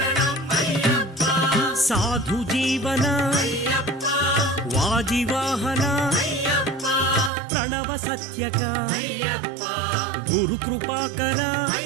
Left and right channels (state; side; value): drops out; left; at 7.3 s